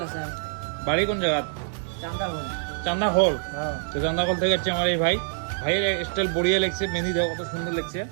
হাসান, বাড়ি কোন জায়গা? চান্দাবন। চান্দা হল। হ্যাঁ তো চান্দা হল থেকে হচ্ছে আমার এই ভাই। ভাইয়ের স্টাইল বড়িয়া লাগছে, মেহেন্দি দেওয়া কত সুন্দর লাগছে।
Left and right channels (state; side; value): silent; left; digital silence